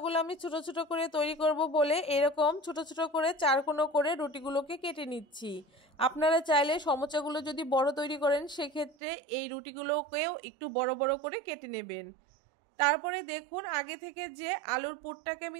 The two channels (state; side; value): drops out; left; at 9.0 s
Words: আমি ছোট ছোট করে তৈরি করব বলে এরকম ছোট ছোট করে চারকোনো করে রুটিগুলোকে কেটে নিচ্ছি। আপনারা চাইলে সমোসাগুলো যদি বড় তৈরি করেন সেক্ষেত্রে এই রুটিগুলোকেও একটু বড় বড় করে কেটে নেবেন। তারপরে দেখুন আগে থেকে যে আলুর পুরটাকে আমি